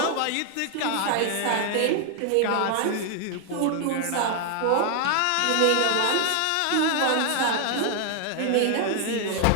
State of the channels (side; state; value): both; different; correlation 0.00